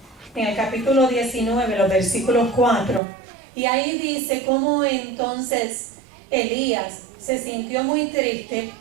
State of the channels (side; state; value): left; drops out; at 3.0 s